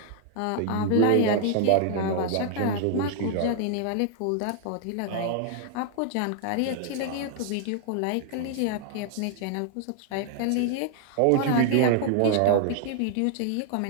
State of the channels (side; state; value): both; different; correlation 0.00